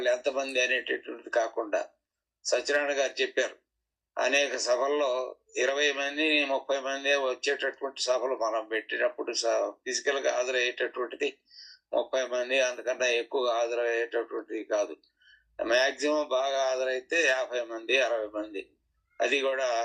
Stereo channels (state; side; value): identical; both; correlation 1.00